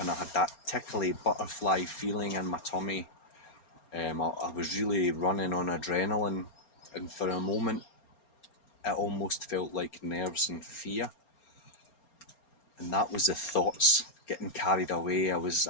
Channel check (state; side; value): late; right; 4.3 ms